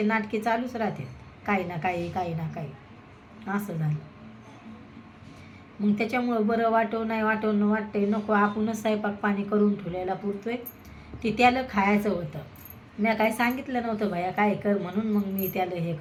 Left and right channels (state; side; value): identical; both; correlation 1.00